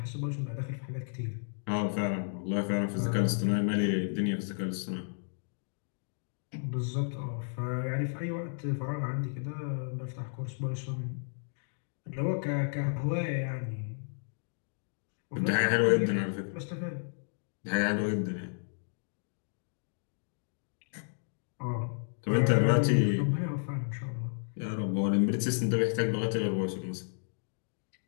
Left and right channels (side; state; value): right; silent; digital silence